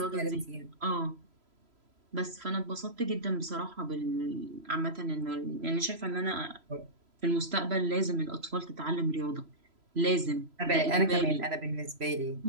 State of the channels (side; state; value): left; late; 3.0 ms